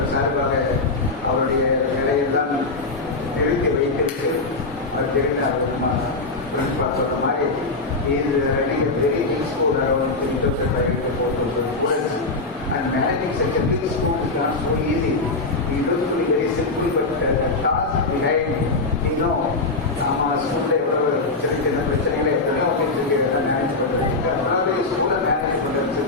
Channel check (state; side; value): quieter; right; 3.5 dB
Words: சார்பாக அவருடைய நிலையெல்லாம் நிறுத்தி வைத்திருக்கு. அது தெரிந்த பிரின்சிபால் சொல்ற மாதிரி is running a very big school around 3,500 to 4,000 students, and managing such a big school is not so easy. It used to be very simple, but the task behind, நம்ம ஸ்கூல்ல எவ்வளவு சின்ன சின்ன பிரச்சனைகளை எத்தனையோ ஆஃபீஸுக்கு மேனேஜ் பண்ணுறது அதாவது ஸ்கூலை மேனேஜ்